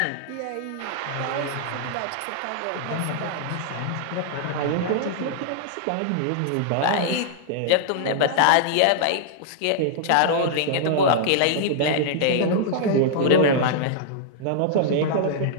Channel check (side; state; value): both; different; correlation -0.01